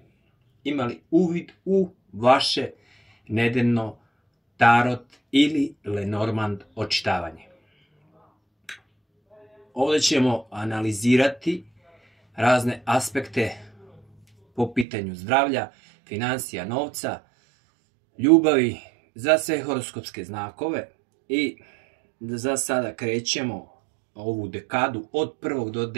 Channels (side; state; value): left; drops out; at 14.9 s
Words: imali uvid u vaše nedeljno tarot ili Lenormand očitavanje. Ovdje ćemo analizirati razne aspekte po pitanju zdravlja, financija, novca, ljubavi, za sve horoskopske znakove i za sada krećemo ovu dekadu od 1. do